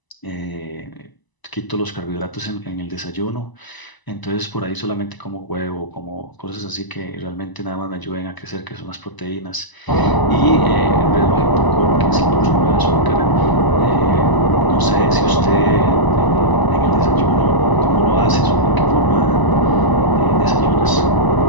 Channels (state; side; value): late; right; 1.0 ms